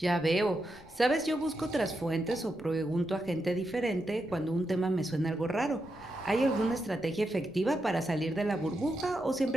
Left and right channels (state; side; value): noise; left; rumble, 23 dB below the sound